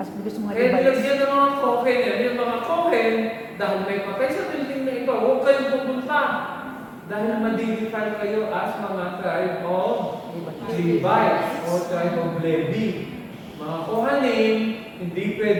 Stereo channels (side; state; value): both; identical; correlation 1.00